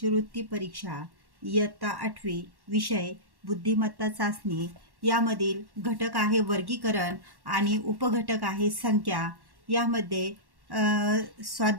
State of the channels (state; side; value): late; left; 1.1 ms